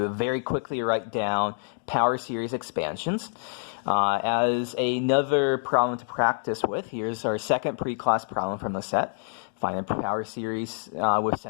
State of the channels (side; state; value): right; silent; 60 dB below the other